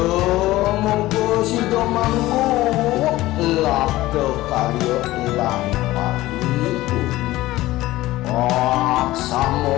si domangku labda karya lampahi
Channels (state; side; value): quieter; right; 17.2 dB